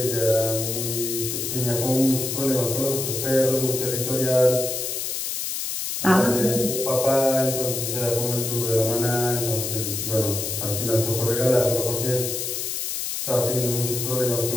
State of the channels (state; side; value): noise; left; hiss, 3 dB below the sound